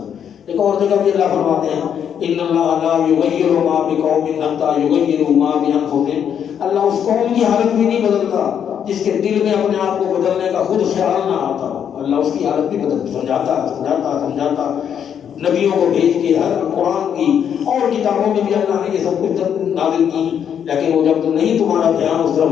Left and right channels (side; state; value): right; quieter; 8.5 dB